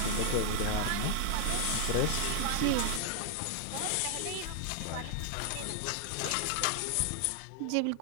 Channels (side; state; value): both; different; correlation 0.00